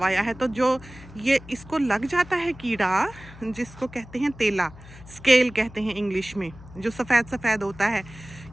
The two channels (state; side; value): noise; left; hum, 19 dB below the sound